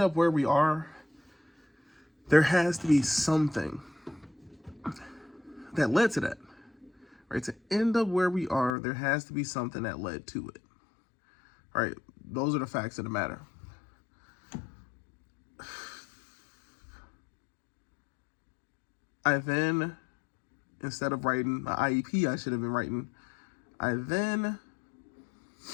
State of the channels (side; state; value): right; drops out; at 8.7 s